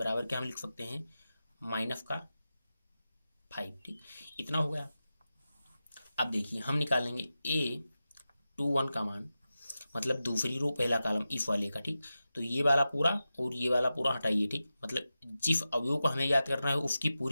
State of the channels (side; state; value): both; inverted; correlation -0.92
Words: क्या हम लिख सकते हैं माइनस का 5। ठीक, इतना हो गया। अब देखिए हम निकालेंगे A21 का मान, मतलब दूसरी रो पहला कॉलम इस वाले का। ठीक, तो ये वाला पूरा और ये वाला पूरा हटाइए। ठीक, मतलब जिस अवयव को हमें याद करना है उसकी